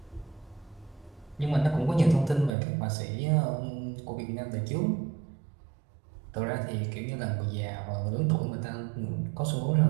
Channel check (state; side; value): drops out; left; at 2.6 s